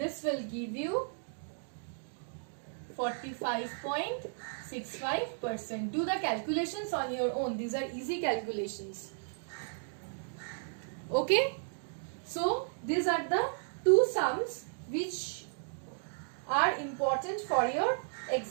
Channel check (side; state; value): left; silent; digital silence